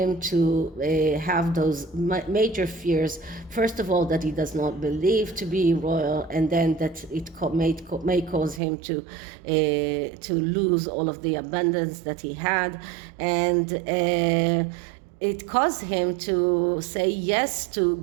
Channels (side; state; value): left; drops out; at 8.6 s